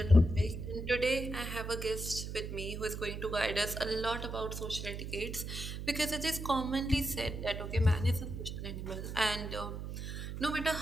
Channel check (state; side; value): noise; right; hum, 6 dB below the sound